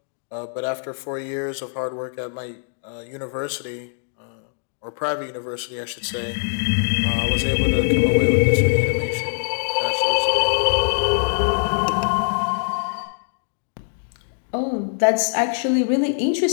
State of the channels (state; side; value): silent; right; digital silence